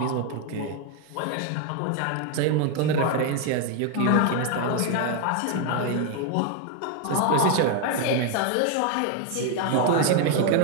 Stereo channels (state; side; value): different; both; correlation 0.01